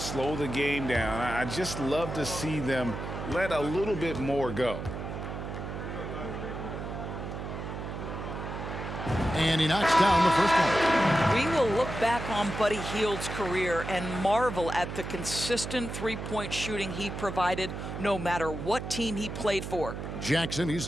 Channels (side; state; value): right; noise; hum, 7 dB below the sound